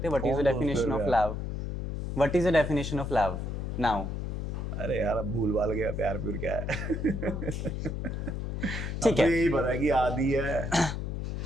हैं? व्हाट इज द कौन दोस्त डेफिनेशन है ऑफ यार? Love? What is the definition of love now? अरे यार, अब भूल भाल गया प्यार प्यूर क्या है। ठीक है। अब तो यही पता है कि आदि है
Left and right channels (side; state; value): left; noise; hum, 3 dB below the sound